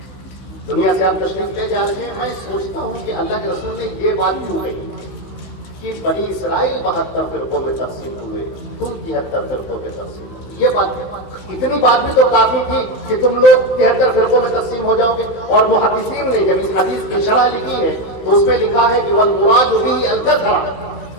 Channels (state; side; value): late; right; 16 ms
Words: دنیا سے آپ تشریف لے جا رہے ہیں، میں سوچتا ہوں کہ اللہ کے رسول نے یہ بات کیوں کہی کہ بنی اسرائیل 72 فرقوں میں تقسیم ہوئے، تم 73 فرقوں میں تقسیم ہوئے۔ یہ بات، اتنی بات بھی تو کافی تھی کہ تم لوگ 73 فرقوں میں تقسیم ہو جاؤ گے۔ اور محدثین نے جب اس حدیث کی شرح لکھی ہے تو اس میں لکھا ہے کہ والمراد به الکثرۃ،